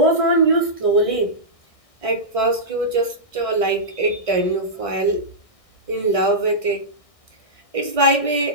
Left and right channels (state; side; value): late; right; 1.6 ms